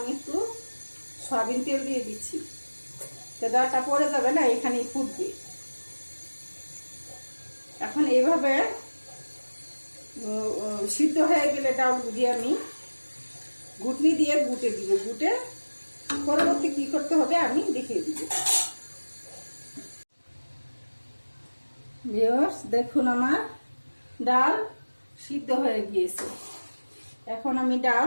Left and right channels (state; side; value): inverted; both; correlation -1.00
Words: একটু সয়াবিন তেল দিয়ে দিচ্ছি, তো ডালটা পড়ে যাবে না, এখানেই ফুটবে। এখন এইভাবে সিদ্ধ হয়ে গেলে ডালগুলি আমি ঘুটনি দিয়ে গুটে দিব। গুটে পরবর্তী কি করতে হবে আমি দেখিয়ে দিব। ভিউয়ার্স দেখুন, আমার ডাল সিদ্ধ হয়ে গিয়েছে। এখন আমি ডাল